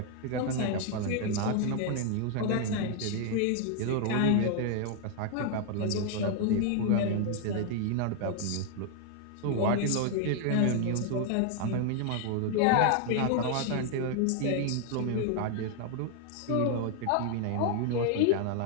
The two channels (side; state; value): both; different; correlation 0.00